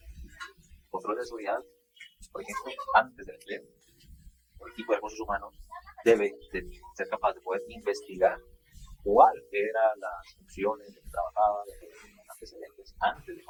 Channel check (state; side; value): identical; both; correlation 1.00